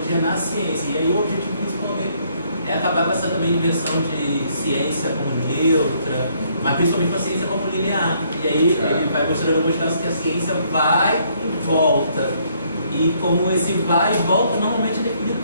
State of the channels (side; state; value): both; inverted; correlation -0.68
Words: na ciência. E aí o objetivo principalmente é acabar com essa também inversão de ciência como neutra, mas principalmente com a ciência como linear. E aí ele vai mostrando alguns casos que a ciência vai e volta. E como esse vai e volta normalmente é definido